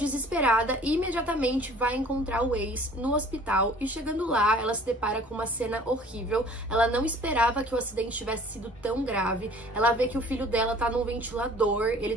e imediatamente vai encontrar o ex no hospital e chegando lá, ela se depara com uma cena horrível. Ela não esperava que o acidente tivesse sido tão grave. Ela vê que o filho dela tá num ventilador,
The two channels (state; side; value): normal; both; correlation 0.51